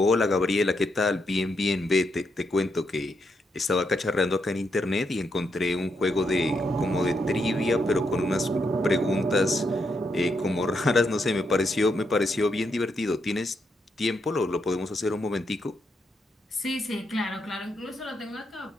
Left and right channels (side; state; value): both; normal; correlation 0.80